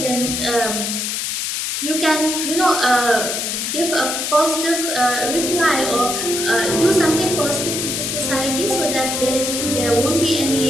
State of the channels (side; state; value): left; noise; hiss, 2 dB below the sound